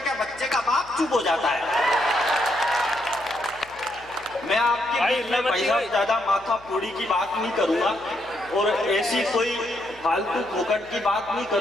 बच्चे का बाप चुप हो जाता है। मैं आपके बीच में भाई साहब ज्यादा माथा फोड़ी की बात नहीं करूंगा और ऐसी कोई फालतू फोकट की बात नहीं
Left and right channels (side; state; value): left; noise; hum, 25 dB below the sound